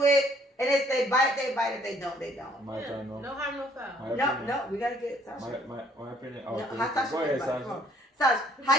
it. And if they bite, they bite. If they don't, they don't. No harm, no foul. No, we got to get Sasha. My opinion. Oh, no, how Sasha go ahead, Sasha. Sasha,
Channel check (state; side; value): normal; both; correlation 0.62